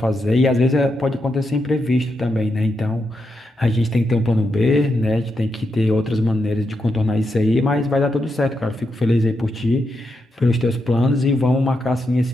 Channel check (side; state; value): both; normal; correlation 0.84